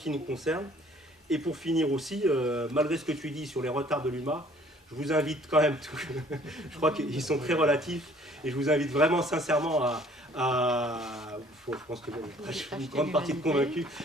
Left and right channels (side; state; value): both; normal; correlation 0.57